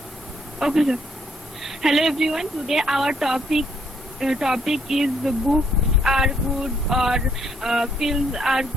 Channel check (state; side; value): normal; both; correlation 0.69